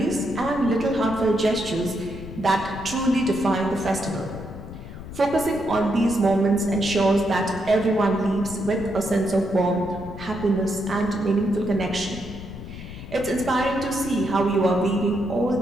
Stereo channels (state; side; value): noise; left; rumble, 12 dB below the sound